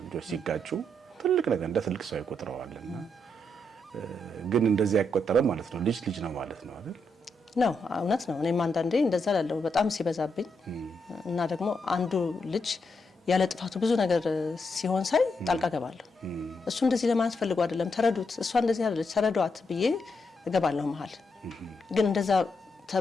ልጆች ሲጋጩ ትልቅ ነገር እንደ ትልቅ ሰው ይቆጥረዋልና ግን እንደዚህ አይቆጠረም ማለት ነው። ልጅ ነው ማለት ነው አይደል? ነው፣ እውነት ነው። እኔም አንዳንዴ እንደዛ ላለው በጣም ሲበዛብኝ እና ደግሞ አንዱ ልጅ ያለ ጥፋቱ ብዙ ነገር ሲሆን ሳይ ጣልቃ ገባለሁ። እሱ እንደዚህ ለማለት ፈልጎ አይደለም፣ ተረዱት፣ እሷ እንደዚህ አይደለች፣ ተረዷት ብዬ እገባለሁ መሀል። ግን እንደዛ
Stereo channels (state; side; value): normal; both; correlation 0.81